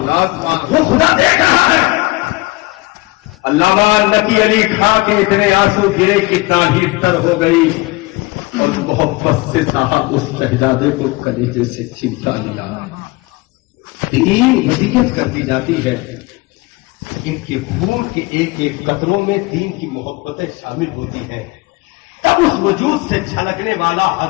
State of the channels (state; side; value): quieter; right; 23.2 dB